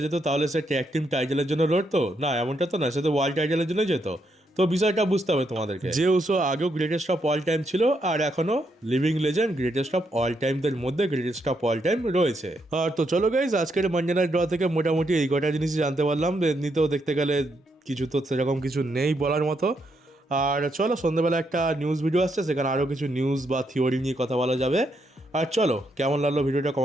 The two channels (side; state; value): both; normal; correlation 0.78